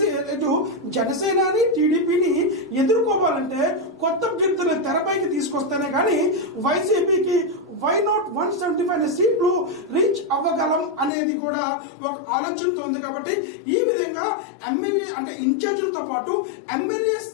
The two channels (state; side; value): drops out; right; at 11.1 s